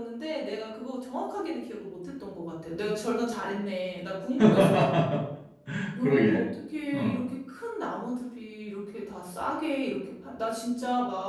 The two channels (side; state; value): both; identical; correlation 1.00